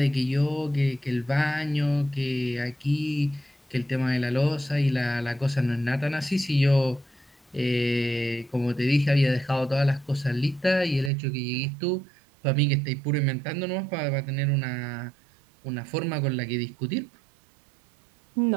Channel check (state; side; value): drops out; left; at 11.1 s